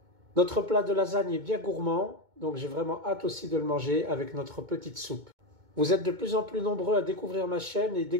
Notre plat de lasagne est bien gourmand, donc j'ai vraiment hâte aussi de le manger avec notre petite soupe. Vous êtes de plus en plus nombreux à découvrir ma chaîne et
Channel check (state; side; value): late; left; 2.2 ms